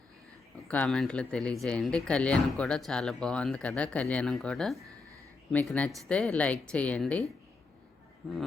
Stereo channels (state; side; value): quieter; right; 3.9 dB